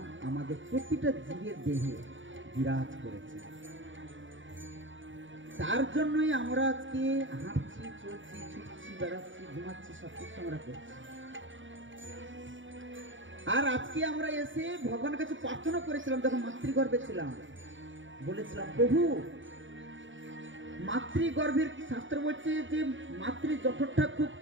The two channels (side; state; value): left; late; 0.56 ms